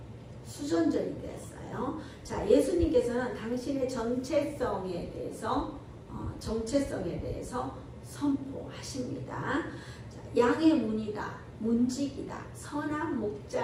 되었어요. 자, 예수님께서는 당신의 정체성에 대해서 선포하십니다. 자, 양의 문이다, 문직이다, 선한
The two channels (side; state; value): both; identical; correlation 1.00